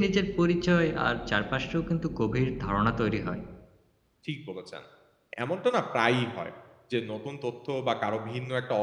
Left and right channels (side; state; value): both; identical; correlation 1.00